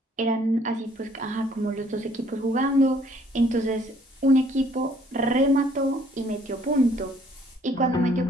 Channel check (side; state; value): both; normal; correlation 0.62